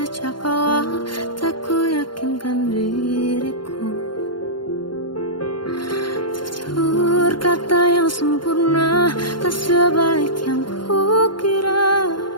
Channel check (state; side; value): late; right; 0.72 ms